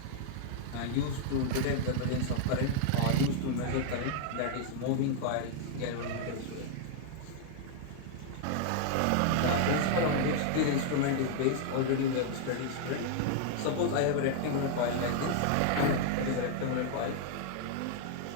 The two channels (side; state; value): both; different; correlation -0.01